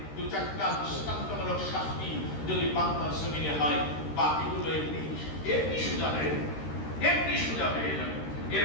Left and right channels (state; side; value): late; right; 13 ms